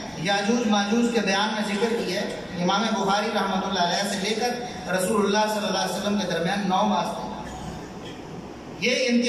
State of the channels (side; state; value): both; identical; correlation 1.00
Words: یاجوج ماجوج کے بیان میں ذکر کی ہے۔ امام بخاری رحمۃ اللہ علیہ سے لے کر رسول اللہ صلی اللہ علیہ وسلم کے درمیان 9 واسطے۔ یہ